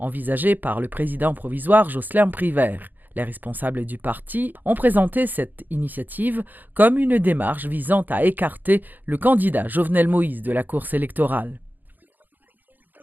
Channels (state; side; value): late; left; 0.086 ms